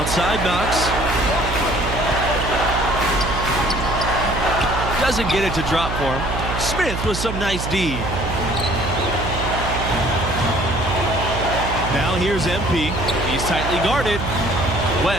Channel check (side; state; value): right; noise; hum, 5 dB below the sound